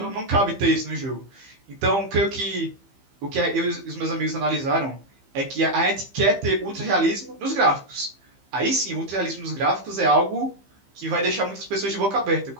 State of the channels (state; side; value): late; left; 15 ms